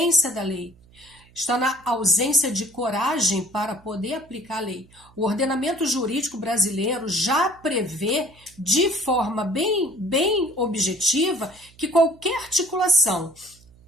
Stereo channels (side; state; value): right; noise; hum, 27 dB below the sound